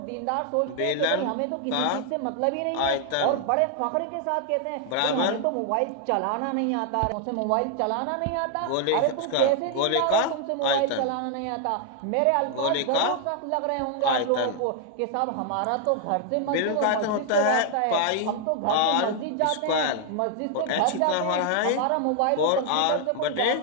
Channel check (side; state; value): both; different; correlation 0.00